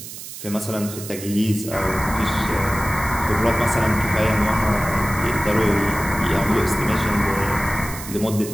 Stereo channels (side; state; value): right; noise; hiss, 11 dB below the sound